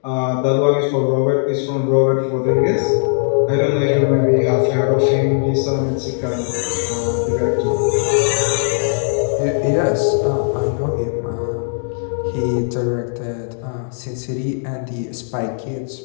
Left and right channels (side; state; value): right; silent; digital silence